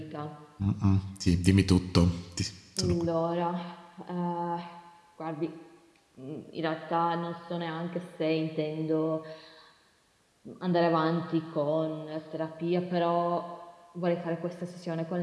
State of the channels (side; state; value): both; identical; correlation 1.00